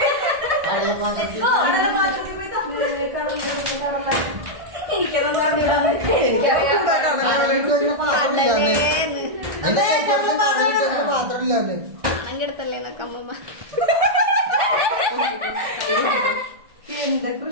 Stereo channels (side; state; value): left; late; 1.6 ms